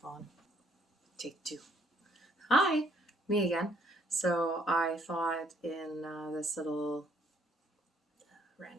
on. Take two. Hi, me again. So I thought in this little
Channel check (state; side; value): normal; both; correlation 0.66